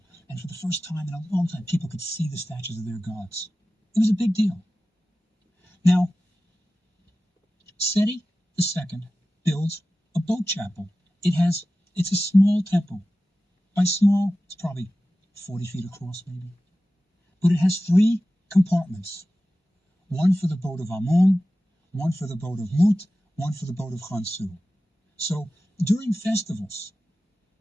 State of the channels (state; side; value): normal; both; correlation 0.95